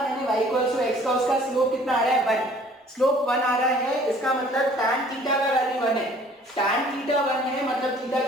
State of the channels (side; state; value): both; normal; correlation 0.54